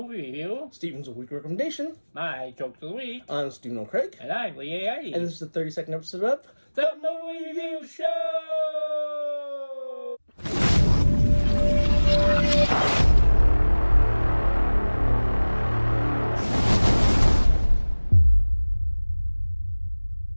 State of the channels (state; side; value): inverted; both; correlation -1.00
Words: review. Steven's Weekly Recommendation. My jokes of the week. I'm Stephen O'Craig. And I'm Lee A. And this is the 32nd episode of The Movie Review Show!